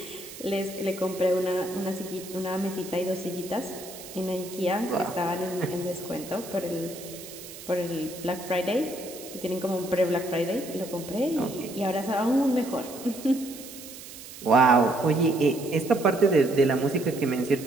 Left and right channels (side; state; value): right; noise; hiss, 14 dB below the sound